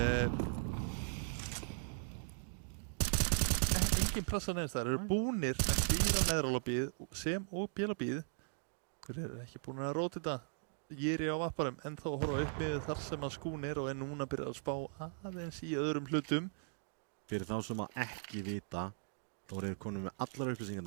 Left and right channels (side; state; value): left; silent; digital silence